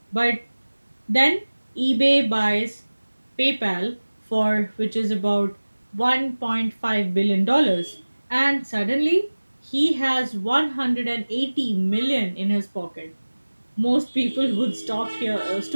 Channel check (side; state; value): both; inverted; correlation -1.00